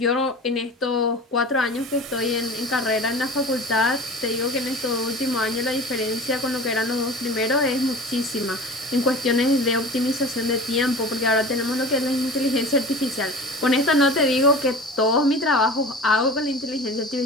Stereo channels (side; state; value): both; normal; correlation 0.37